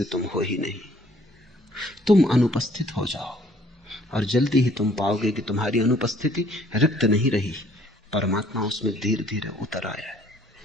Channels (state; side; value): normal; both; correlation 0.60